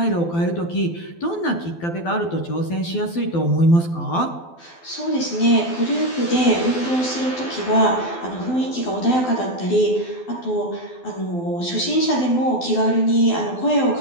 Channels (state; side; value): late; right; 12 ms